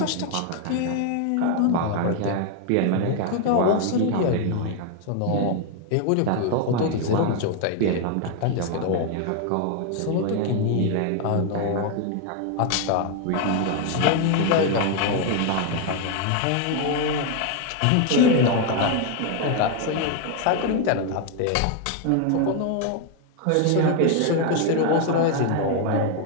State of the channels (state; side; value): different; both; correlation 0.01